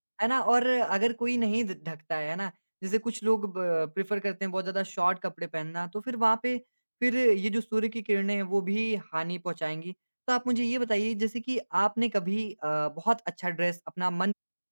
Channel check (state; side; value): inverted; both; correlation -1.00